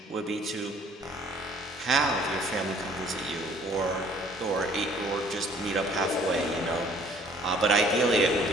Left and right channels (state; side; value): normal; both; correlation 0.57